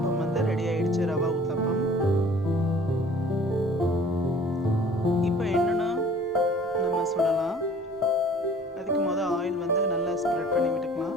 வந்து ரெடி ஆயிடுச்சு, ரவா ஊத்தப்பம். இப்போ என்னென்னா நம்ம சுடலாம். அதுக்கு முதல் ஆயில் வந்து நல்லா ஸ்ப்ரெட் பண்ணி விட்டுக்கலாம்.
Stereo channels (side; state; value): both; normal; correlation 0.50